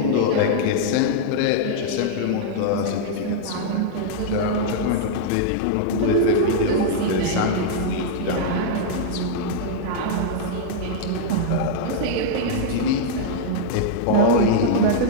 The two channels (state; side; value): different; both; correlation -0.02